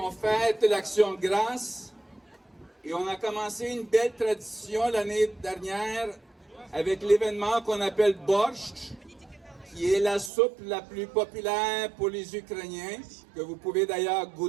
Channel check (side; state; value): left; drops out; at 10.3 s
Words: fête l'Action de grâce et on a commencé une belle tradition l'année dernière avec l'événement qu'on appelle Borscht, qui est la soupe la plus populaire pour les Ukrainiens, que vous pouvez d'ailleurs